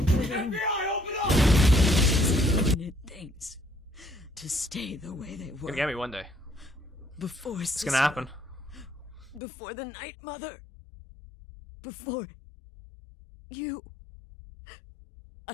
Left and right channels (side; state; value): right; drops out; at 9.4 s